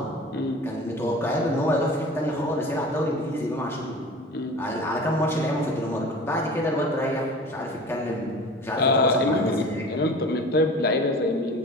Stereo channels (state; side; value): normal; both; correlation 0.39